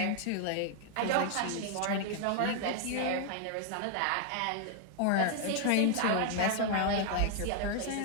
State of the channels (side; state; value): both; different; correlation 0.00